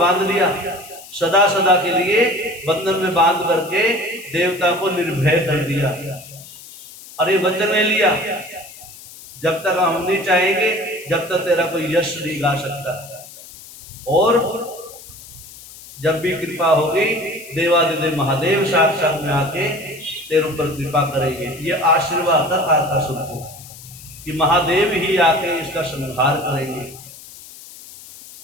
लिया, सदा सदा के लिए बंधन में बांध करके देवता को निर्भय कर दिया। अरे वचन ले लिया, जब तक हम नहीं चाहेंगे जब तक तेरा कोई यश नहीं गा सकता, और जब भी कृपा होगी देवादिदेव महादेव साक्षात में आके तेरे ऊपर कृपा करेंगे। ये आशीर्वाद था तारकासुर को कि महादेव ही आके इसका संहार करेंगे।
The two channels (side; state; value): left; noise; hiss, 18 dB below the sound